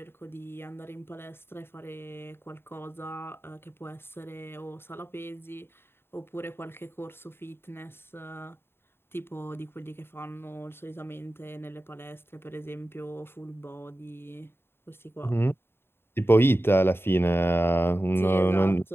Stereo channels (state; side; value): late; right; 0.11 ms